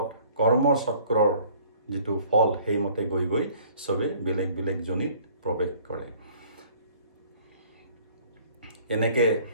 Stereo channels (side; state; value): both; inverted; correlation -0.55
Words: কৰ্মচক্ৰৰ যিটো ফল সেইমতে গৈ গৈ সবে বেলেগ বেলেগ জনিত প্ৰৱেশ কৰে এনেকৈ